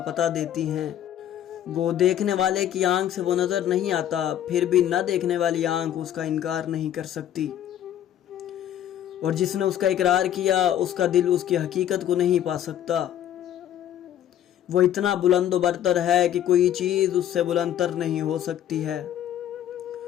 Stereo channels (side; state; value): right; quieter; 11.0 dB